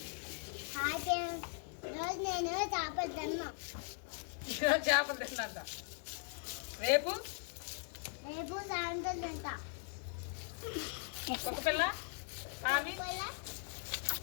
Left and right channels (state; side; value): silent; right; 51 dB below the other